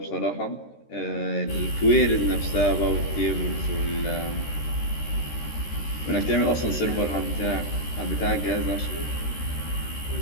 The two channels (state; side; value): late; right; 13 ms